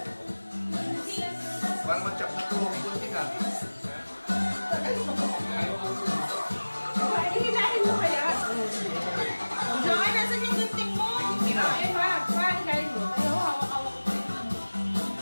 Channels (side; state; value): both; inverted; correlation -1.00